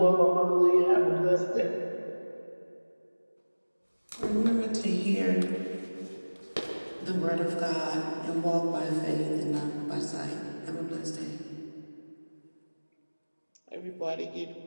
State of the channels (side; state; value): both; inverted; correlation -1.00